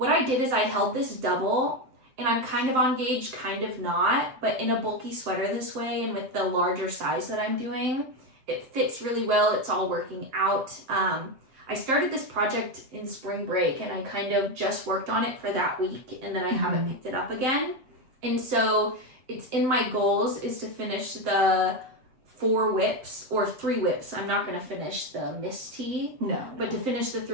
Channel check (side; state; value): left; late; 7.6 ms